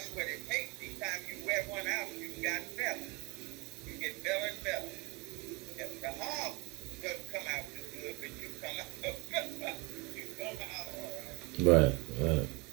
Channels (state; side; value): quieter; left; 27.4 dB